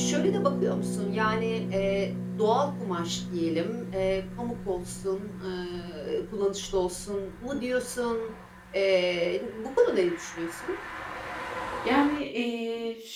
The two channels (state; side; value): identical; both; correlation 1.00